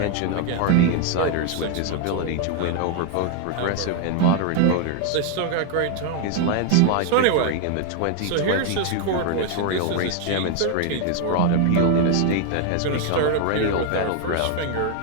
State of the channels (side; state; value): both; different; correlation 0.00